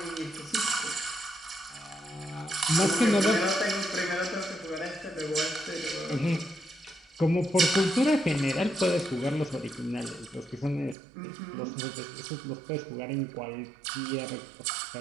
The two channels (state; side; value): drops out; left; at 11.0 s